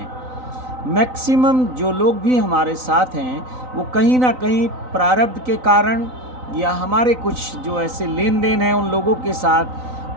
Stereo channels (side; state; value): left; late; 3.9 ms